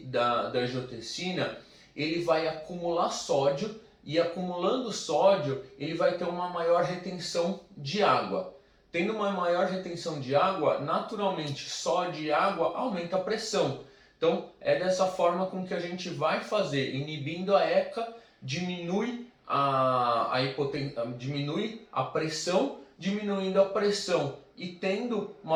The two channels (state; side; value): identical; both; correlation 1.00